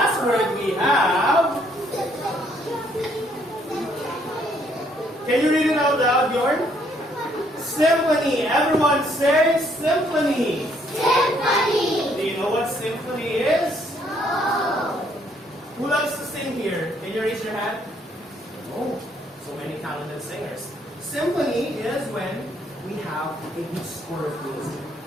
word we have. Can you read it out loud, Bjorn? Symphony. Everyone say symphony. Do you know what symphony is? Who loves to sing here? Can you raise your hand? Oh, so many talented singers. Symphony is when we have a good score of music.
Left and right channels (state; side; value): normal; both; correlation 0.68